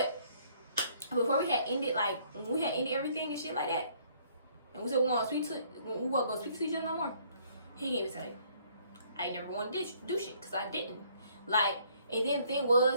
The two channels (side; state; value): both; inverted; correlation -0.63